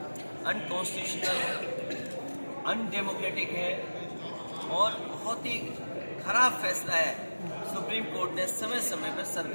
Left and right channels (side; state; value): both; inverted; correlation -1.00